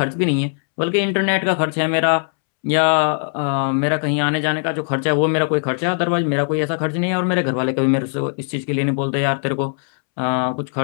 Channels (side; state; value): right; silent; 66 dB below the other